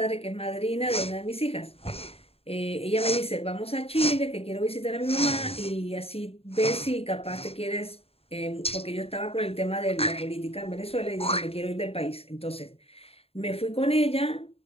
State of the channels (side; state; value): right; late; 0.28 ms